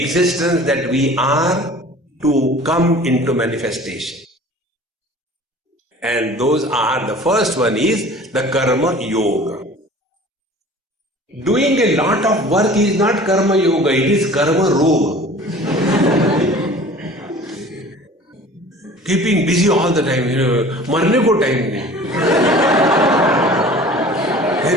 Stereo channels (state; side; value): normal; both; correlation 0.45